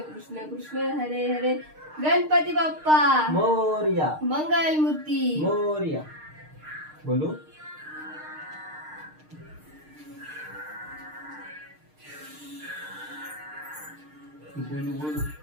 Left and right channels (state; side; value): late; left; 6.5 ms